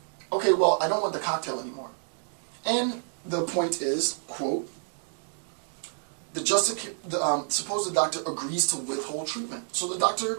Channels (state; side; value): silent; left; digital silence